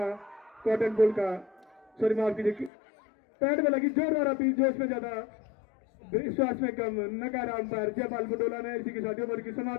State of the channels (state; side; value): drops out; right; at 2.7 s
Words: कॉटन बॉल का, सॉरी माफ कीजिए, पैड में लगी जोरदार अपील, जोश में ज्यादा विश्वास में कम, नकारा अंपायर जयपाल बडोला ने। इसी के साथ ओवर की